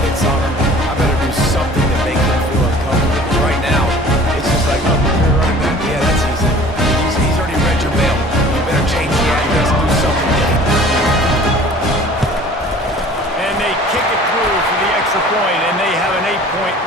hits on him. I better do something to make him feel uncomfortable. Because right now, it's just like, oh, you're running back. Yeah, that's easy. He's already read your mail. You better change the address and do something different.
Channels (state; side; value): normal; both; correlation 0.47